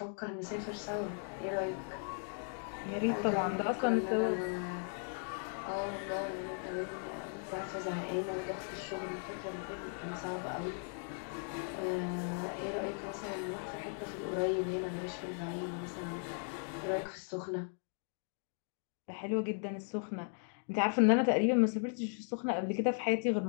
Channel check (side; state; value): right; silent; 53 dB below the other